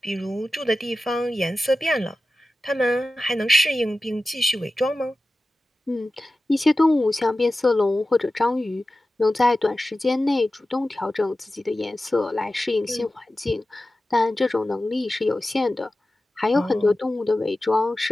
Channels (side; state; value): both; normal; correlation 0.94